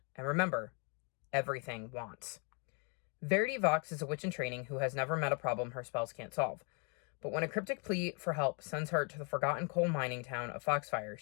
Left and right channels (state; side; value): quieter; right; 36.7 dB